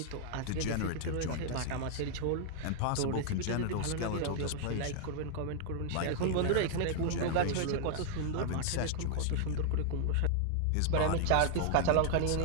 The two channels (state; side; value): different; both; correlation -0.01